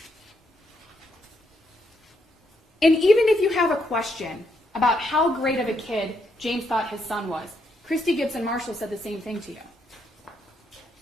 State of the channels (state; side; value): normal; both; correlation 0.77